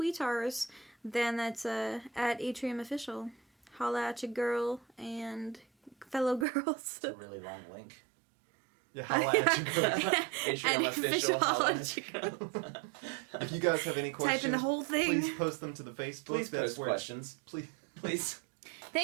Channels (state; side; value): drops out; left; at 6.5 s